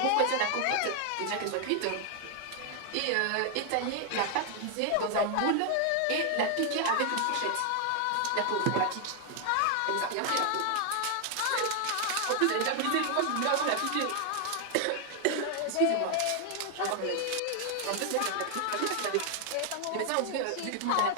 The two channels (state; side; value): different; both; correlation 0.00